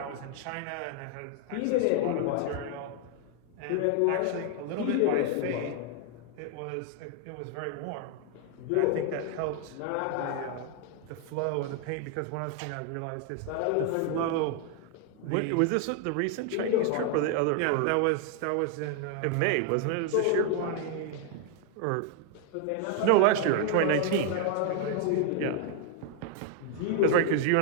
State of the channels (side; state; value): both; different; correlation 0.00